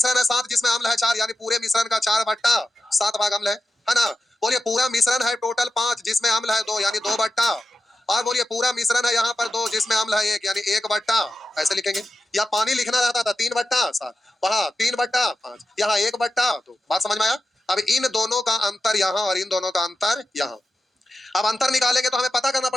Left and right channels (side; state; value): both; normal; correlation 0.91